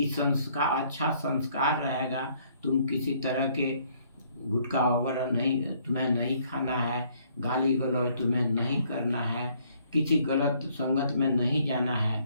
संस्कार, अच्छा संस्कार रहेगा, तुम किसी तरह के गुटखा वगैरह नहीं, तुम्हें नहीं खाना है, गाली गलौज तुम्हें नहीं करना है, किसी गलत संगत में नहीं जाना है।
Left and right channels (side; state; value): both; inverted; correlation -0.65